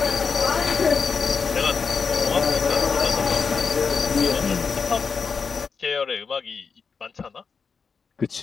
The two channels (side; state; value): right; quieter; 5.4 dB